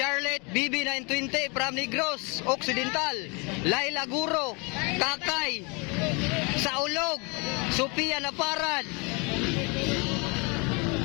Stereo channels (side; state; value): right; quieter; 30.9 dB